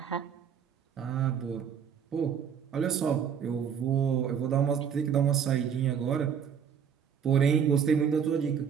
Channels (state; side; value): quieter; left; 7.7 dB